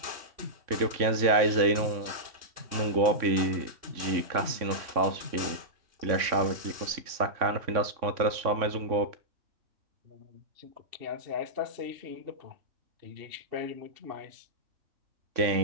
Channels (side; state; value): left; late; 3.6 ms